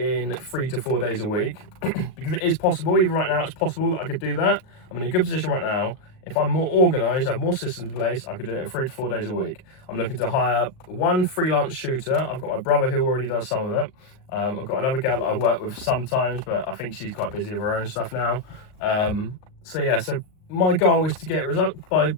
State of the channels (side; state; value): right; late; 38 ms